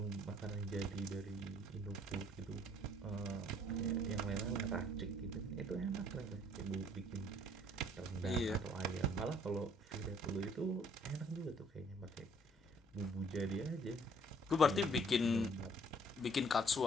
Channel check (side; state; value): both; normal; correlation 0.60